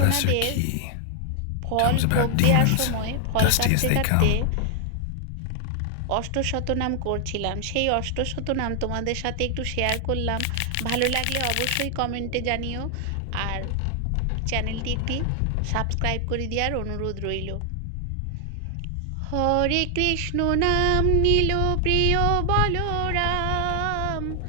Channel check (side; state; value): both; different; correlation 0.00